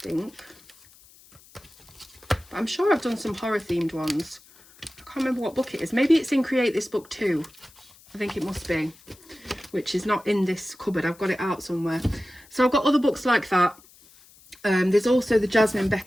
But I'm sure I've done some horror themed ones. I can't remember what book it is. Maybe it's in Create This Book too. I think it must be, which is not in this cupboard. I've got it out somewhere. So I've got other books like that. There's also the Jasmine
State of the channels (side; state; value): left; noise; hiss, 25 dB below the sound